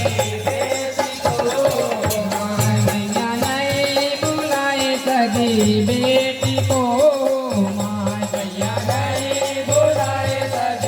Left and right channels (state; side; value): identical; both; correlation 1.00